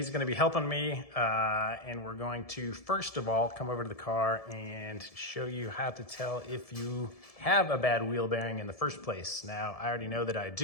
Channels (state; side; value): late; right; 1.7 ms